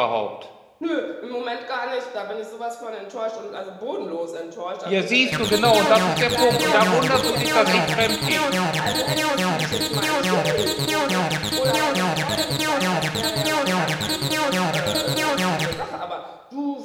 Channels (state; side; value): identical; both; correlation 1.00